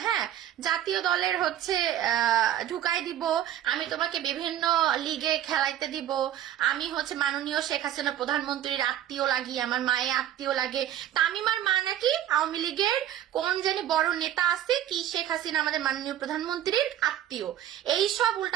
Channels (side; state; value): left; quieter; 11.6 dB